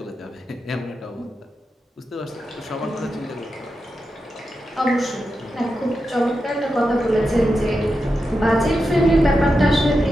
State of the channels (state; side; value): normal; both; correlation 0.89